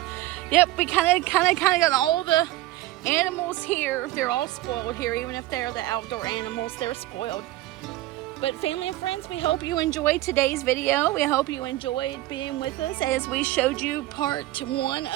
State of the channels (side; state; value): left; quieter; 16.5 dB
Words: Yep. We kind of got all the animals here. They're all spoiled here, even if they're the outdoor animals. They're spoiled. But family and friends, we hope you enjoyed today's video. We hope you enjoyed being with us as we showed you part one